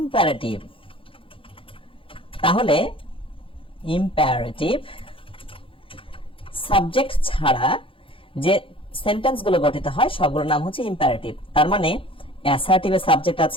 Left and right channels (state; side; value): late; right; 0.26 ms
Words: তাহলে ইম্পারেটিভ সাবজেক্ট ছাড়া যে সেন্টেন্সগুলো গঠিত হয় সবগুলোর নাম হচ্ছে ইম্পারেটিভ। তার মানে অ্যাসার্টিভে সাবজেক্ট